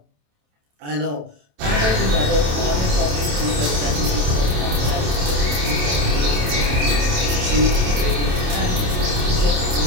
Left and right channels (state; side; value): late; left; 27 ms